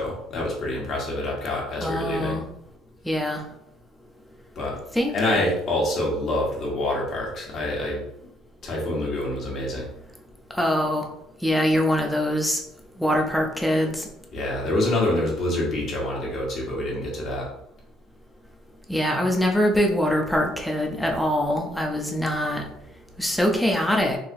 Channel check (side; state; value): both; normal; correlation 0.73